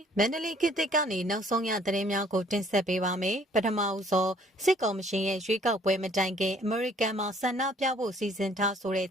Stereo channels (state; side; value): normal; both; correlation 0.59